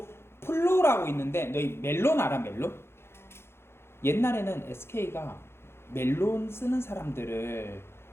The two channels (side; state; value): right; late; 0.12 ms